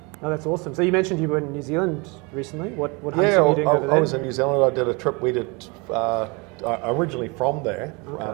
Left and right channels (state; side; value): quieter; left; 28.8 dB